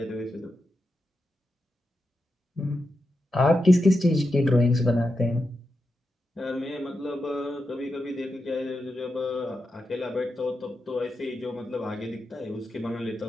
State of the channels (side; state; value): both; normal; correlation 0.88